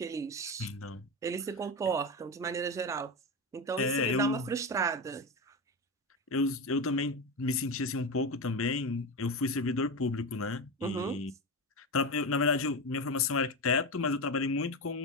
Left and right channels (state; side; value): normal; both; correlation 0.18